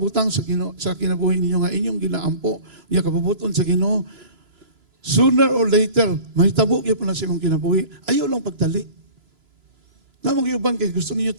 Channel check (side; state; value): left; late; 3.0 ms